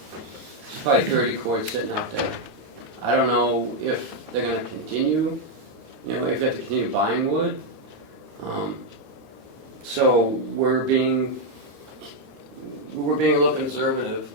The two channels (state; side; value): late; left; 13 ms